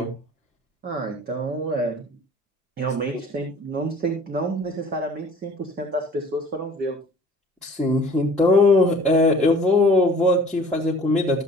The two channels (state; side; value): normal; both; correlation 0.49